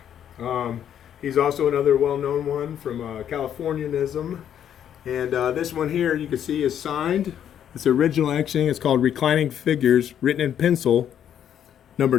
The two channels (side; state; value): right; quieter; 9.6 dB